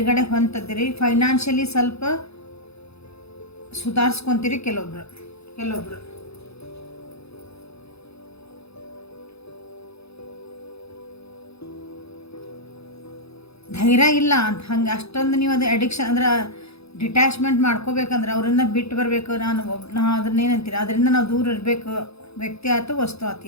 ಹೊಂದಿದ್ದೀರಿ. ಫೈನಾನ್ಷಿಯಲಿ ಸ್ವಲ್ಪ ಸುಧಾರಿಸ್ಕೊತೀರಿ ಕೆಲವೊಬ್ರು. ಧೈರ್ಯ ಇಲ್ಲ ಅಂತ ಹಂಗೆ ಅಷ್ಟೊಂದು ನೀವು ಅದು ಅಡಿಕ್ಷನ್ ಅಂದ್ರೆ ಡಿಟ್ಯಾಚ್ಮೆಂಟ್ ಮಾಡ್ಕೋಬೇಕಂದ್ರೆ ಅವರಿಂದ ಬಿಟ್ಟು ಬರಬೇಕು. ನಾ ಅದನ್ನೇನಂತೀರಿ, ಅದರಿಂದ ನಾವು ದೂರ ಇರಬೇಕು. ವ್ಯಕ್ತಿ ಆಯ್ತು, ವಸ್ತು ಆಯ್ತು,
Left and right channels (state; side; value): late; right; 0.79 ms